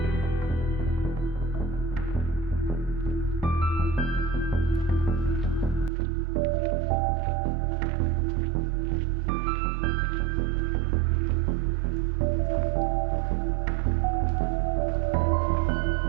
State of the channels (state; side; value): drops out; left; at 5.9 s